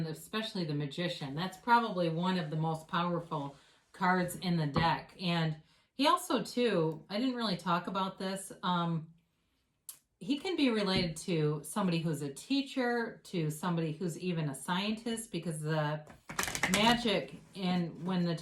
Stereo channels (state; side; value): identical; both; correlation 1.00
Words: especially the Magician. That's probably one of the most powerful cards in the deck. And he also, too, I didn't really talk about this. He can be related to somebody who's a teacher, to somebody who's even a scientist, because the magic in when the